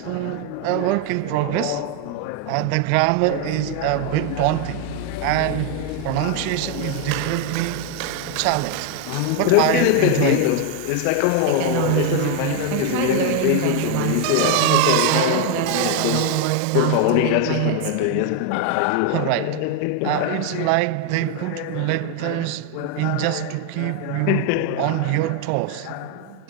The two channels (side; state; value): both; different; correlation 0.01